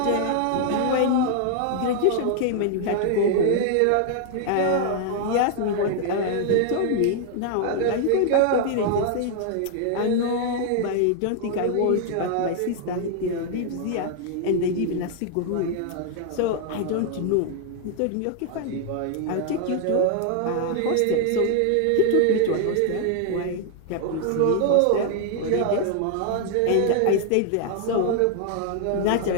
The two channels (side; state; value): both; different; correlation 0.00